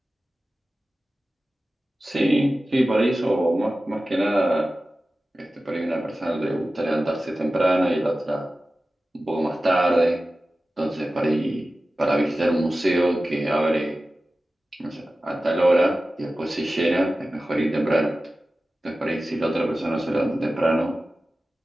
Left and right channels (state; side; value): normal; both; correlation 0.95